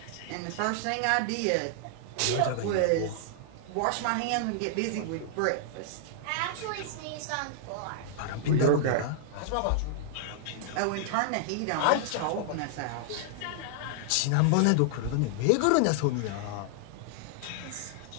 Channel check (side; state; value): both; different; correlation -0.01